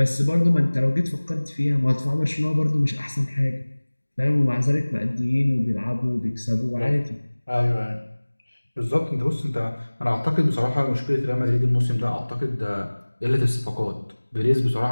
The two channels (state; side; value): inverted; both; correlation -1.00